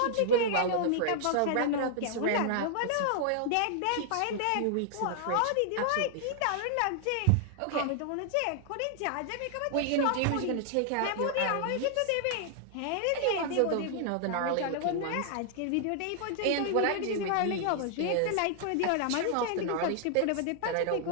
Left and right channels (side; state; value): both; different; correlation -0.01